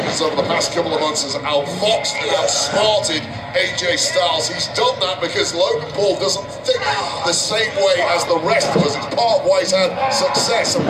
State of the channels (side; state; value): both; identical; correlation 1.00